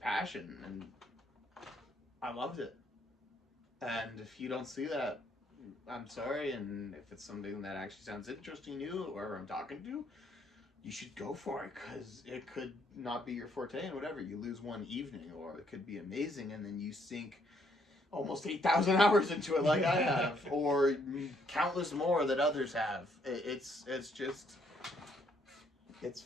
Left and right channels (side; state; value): both; normal; correlation 0.69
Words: and I loved it. And if you don't see that, I'm sorry, and if it's something that actually sounds interesting to you, or I'm talking to, you should go for it, because it could not be your forte, and whatever, you lose one evening, or it could be amazing, and then you sink almost 8,000 hours into it like I have, or countless more that others have. It's just, it's